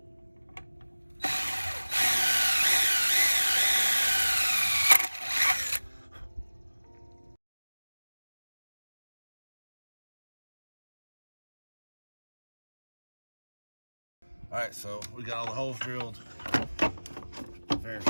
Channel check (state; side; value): inverted; both; correlation -1.00